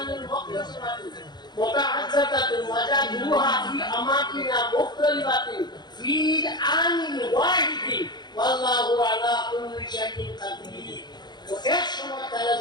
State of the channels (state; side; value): late; right; 0.21 ms